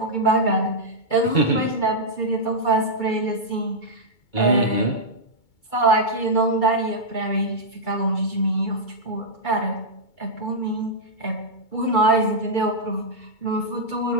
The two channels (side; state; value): right; late; 2.2 ms